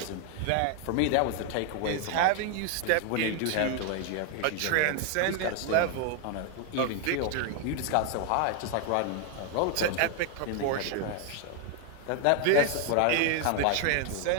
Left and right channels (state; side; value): different; both; correlation 0.00